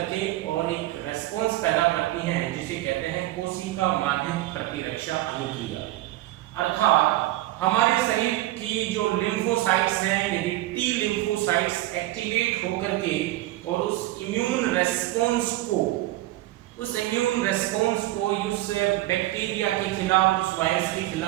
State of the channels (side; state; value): left; quieter; 16.6 dB